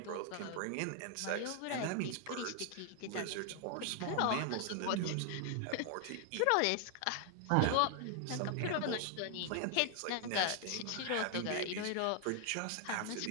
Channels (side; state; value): both; different; correlation 0.00